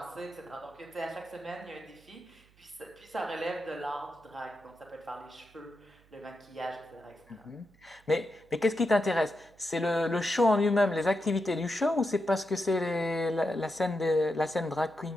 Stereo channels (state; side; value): noise; right; hum, 29 dB below the sound